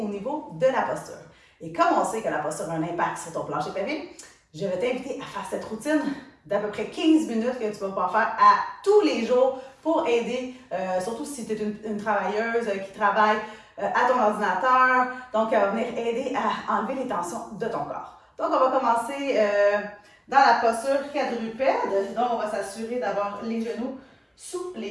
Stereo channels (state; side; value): identical; both; correlation 1.00